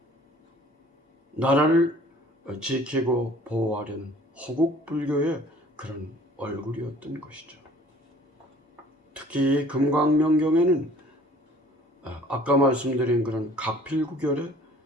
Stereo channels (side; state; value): both; normal; correlation 0.52